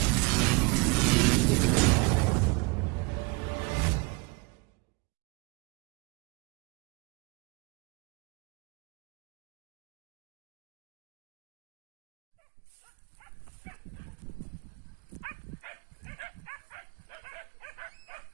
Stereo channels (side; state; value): left; quieter; 27.5 dB